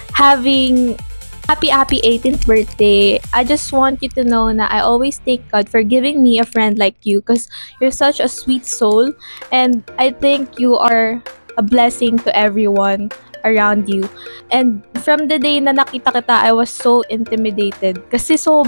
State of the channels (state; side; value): inverted; both; correlation -1.00